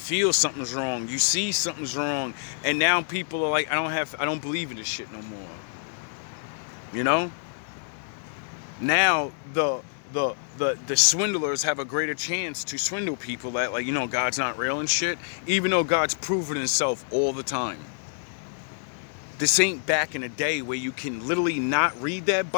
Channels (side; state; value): right; silent; digital silence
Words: something's wrong. You see something's wrong. And now people are like, I don't believe in this shit no more. You know? Now the swindlers have a greater chance to swindle people that, like, you know, God's not real and shit, even though God's proven himself all the time. This ain't back in the day where you can literally not read that